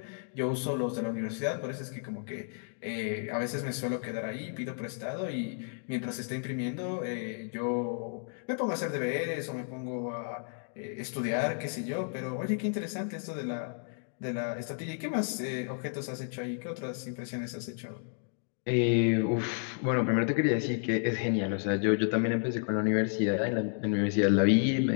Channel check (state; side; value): silent; right; 56 dB below the other